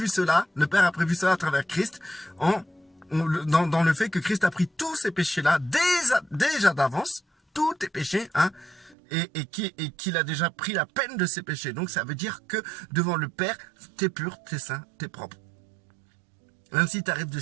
cela, le Père a prévu cela à travers Christ, dans le fait que Christ a pris tous ces péchés-là déjà d'avance, tous tes péchés, hein, et qu'il a déjà pris la peine de ces péchés. Donc ça veut dire que devant le Père, t'es pur, t'es saint, t'es propre. Même si tu arrives de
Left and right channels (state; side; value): drops out; left; at 9.0 s